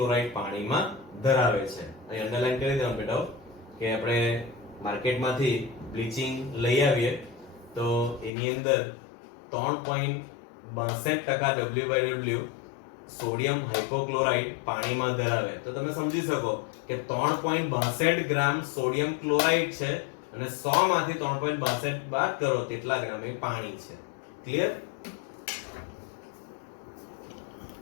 પાણીમાં ધરાવે છે. અહીં અંડરલાઈન કરી દેવાનું બેટા કે આપણે માર્કેટમાંથી બ્લીચિંગ લઈ આવીએ તો એની અંદર 3.62% WW સોડિયમ હાઇપોક્લોરાઇટ પાણીમાં ધરાવે, તો તમે સમજી શકો કે 3.62 ગ્રામ સોડિયમ ક્લોરાઇડ છે અને 100 માંથી 3.62 બાદ કરો તેટલા ગ્રામ એ પાણી છે. ક્લિયર?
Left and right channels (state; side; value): drops out; right; at 8.3 s